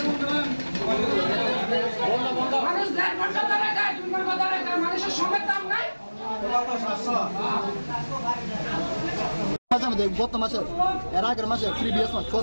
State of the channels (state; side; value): inverted; both; correlation -1.00